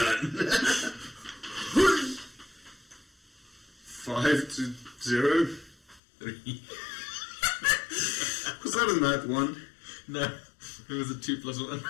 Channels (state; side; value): drops out; right; at 6.0 s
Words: 5 to 0. 3. Was that a nat 1? No, it was a 2+1.